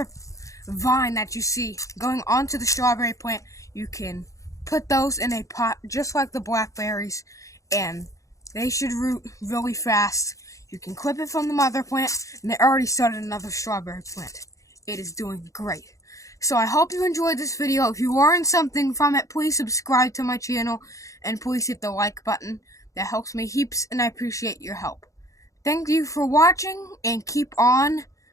vine that you see going onto the strawberry plant. You can put those in a pot just like the blackberries, and they should root really fast. You can clip it from the mother plant, and they already started another strawberry plant. It is doing great. So I hope you enjoyed this video. If you learned something from it, please subscribe to my channel, and please hit the like button. That helps me heaps, and I appreciate your help. Thank you for watching, and keep on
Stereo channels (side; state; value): right; late; 0.16 ms